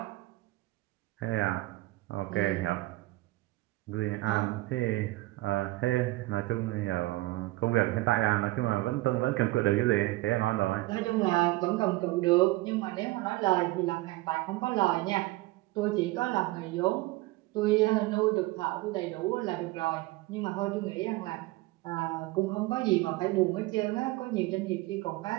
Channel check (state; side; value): quieter; left; 19.6 dB